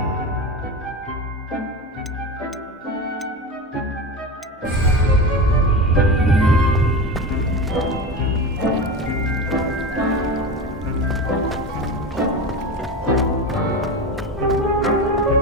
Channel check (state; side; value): normal; both; correlation 0.24